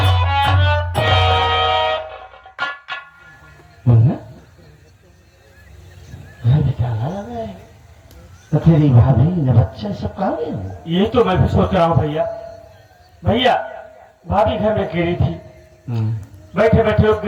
तो तेरी भाभी ने बच्चे सब कहा गए? ये तो मैं भी सोच रहा हूँ भैया। भैया भाभी घर में अकेली थी, बैठे बैठे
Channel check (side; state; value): both; identical; correlation 1.00